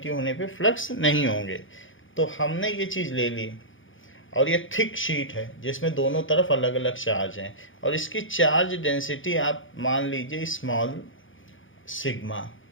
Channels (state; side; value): late; right; 0.57 ms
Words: होने पे फ्लक्स नहीं होंगे। तो हमने ये चीज़ ले ली, और ये थिक शीट है जिसमें दोनों तरफ अलग अलग चार्ज हैं, और इसकी चार्ज डेंसिटी आप मान लीजिए small sigma.